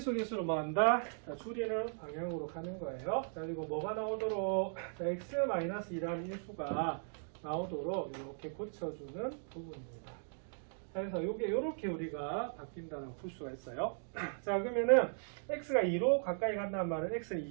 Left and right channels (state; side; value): silent; left; digital silence